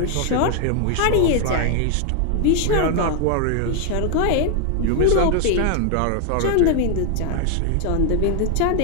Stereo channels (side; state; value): both; different; correlation 0.00